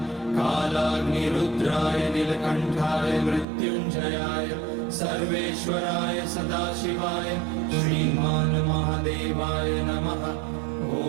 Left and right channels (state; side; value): drops out; left; at 3.5 s